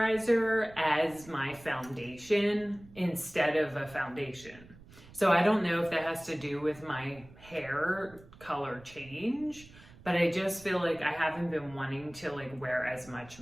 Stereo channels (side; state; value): right; noise; rumble, 21 dB below the sound